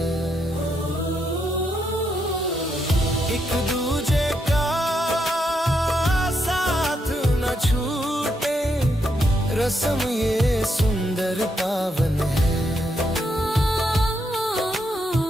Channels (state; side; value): normal; both; correlation 0.79